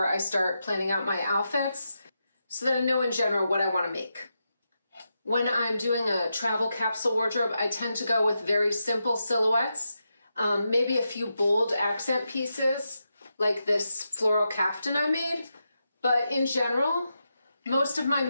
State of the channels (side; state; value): both; inverted; correlation -0.87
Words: I start planning out my outfits so that I know in general what I want to make. When I'm doing a travel capsule wardrobe, I tend to go with very simple silhouettes, maybe a few bold accent pieces, like this floral caftan I made. But in general, most of my